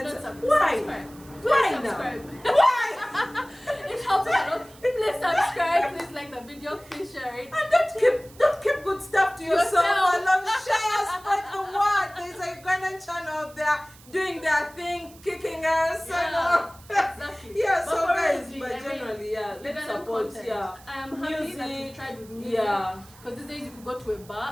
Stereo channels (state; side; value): noise; right; hiss, 23 dB below the sound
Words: not. Why? Why now? Why? It helps a lot. Please subscribe. Please like the video. Please share it. And don't keep good stuff to yourself. I love share, spread the word. There's a Ugandan channel out there doing their thing, kicking us. Yeah, exactly. Yeah. So guys, but generally, let's support. Content. Yeah. I am happy that you tried with music. Yeah. Because these days you could go to a